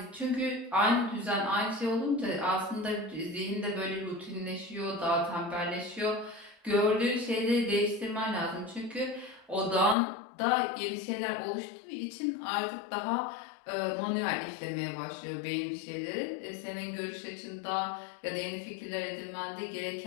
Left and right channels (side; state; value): right; drops out; at 10.0 s